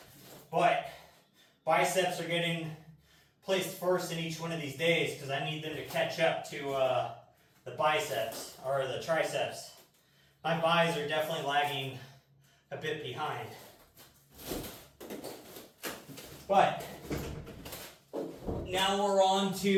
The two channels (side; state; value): both; identical; correlation 1.00